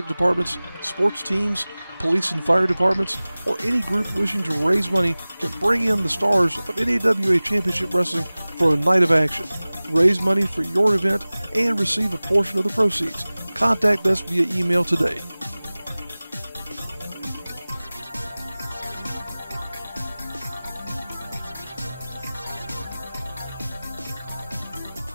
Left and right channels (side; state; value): both; inverted; correlation -0.99